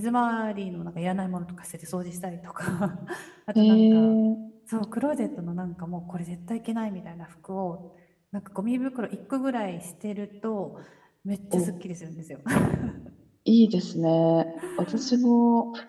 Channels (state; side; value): identical; both; correlation 1.00